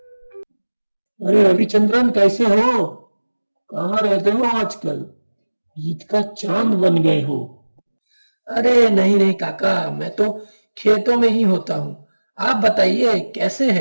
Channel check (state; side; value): inverted; both; correlation -1.00